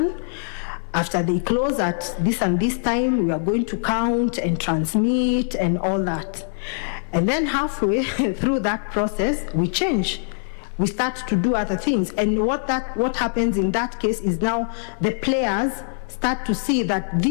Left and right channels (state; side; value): silent; right; 55 dB below the other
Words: After they close at this and this time, we are going to count and transmit and all that. And then halfway through that process, we change. We start to do other things. And what happens in that case is now the players start to see that